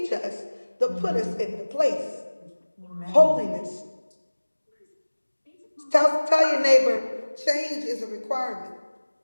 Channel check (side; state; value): both; inverted; correlation -1.00